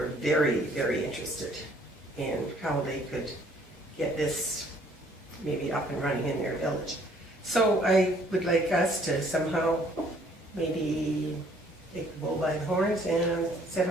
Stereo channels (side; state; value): both; normal; correlation 0.61